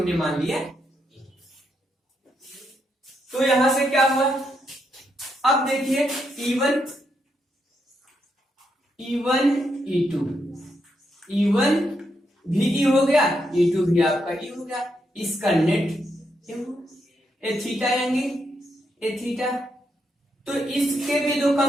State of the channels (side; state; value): both; normal; correlation 0.80